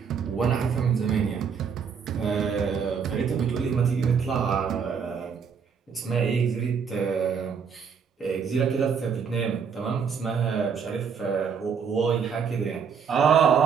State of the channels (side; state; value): left; quieter; 6.5 dB